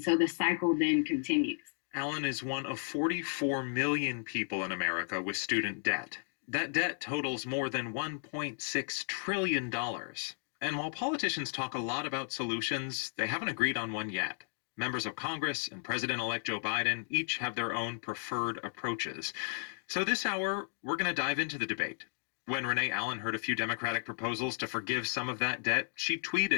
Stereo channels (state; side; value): silent; right; digital silence